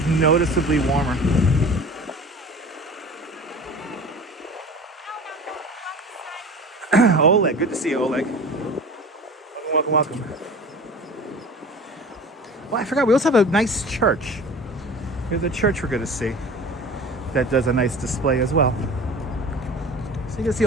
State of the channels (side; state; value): both; normal; correlation 0.39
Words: noticeably warmer. Oleg, good to see you, Oleg. Welcome. Well, I forgot, we also have a nice church. Here's a church we're going to see that does a nice display as well. So you can see